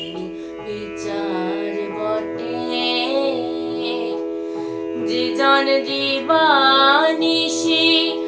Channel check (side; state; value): both; identical; correlation 1.00